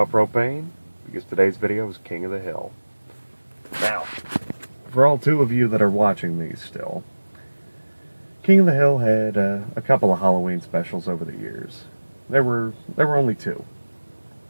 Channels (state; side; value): inverted; both; correlation -1.00